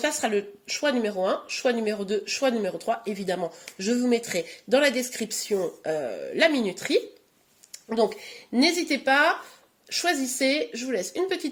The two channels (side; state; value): both; identical; correlation 1.00